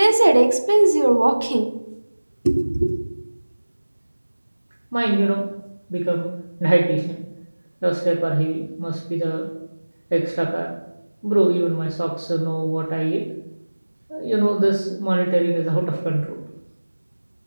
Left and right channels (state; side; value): inverted; both; correlation -1.00